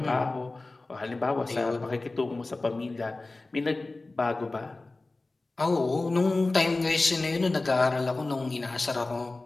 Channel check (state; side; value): quieter; right; 3.2 dB